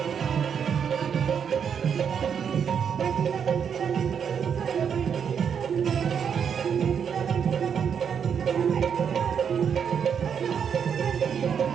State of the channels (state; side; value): quieter; left; 7.5 dB